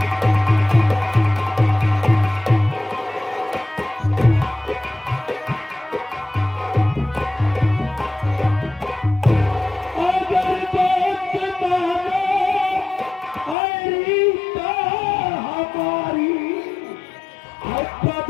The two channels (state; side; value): drops out; right; at 13.6 s